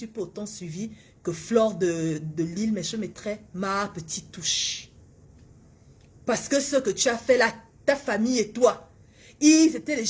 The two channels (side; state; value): both; identical; correlation 1.00